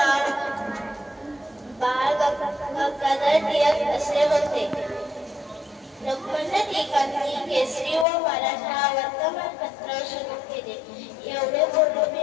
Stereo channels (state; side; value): drops out; right; at 8.1 s